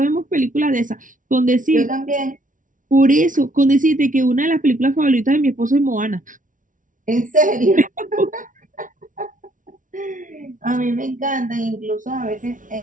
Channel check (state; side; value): late; left; 0.38 ms